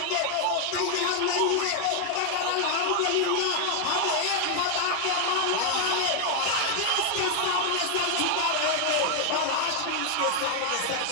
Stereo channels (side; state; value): both; different; correlation 0.00